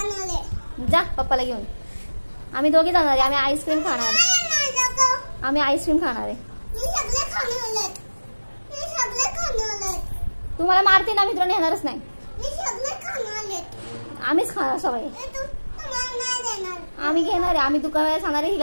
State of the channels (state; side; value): inverted; both; correlation -1.00